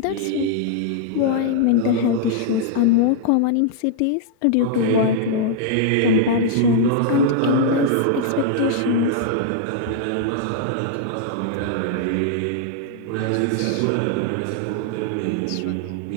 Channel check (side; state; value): both; different; correlation -0.01